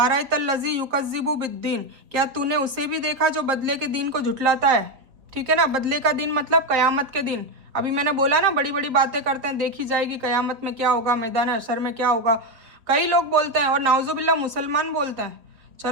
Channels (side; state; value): left; late; 3.8 ms